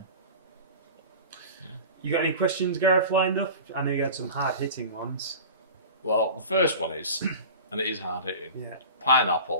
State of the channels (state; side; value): inverted; both; correlation -0.36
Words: You got any questions, Gareth, lined up? I know you had some hard-hitting ones. Well, the first one is, and it is hard-hitting,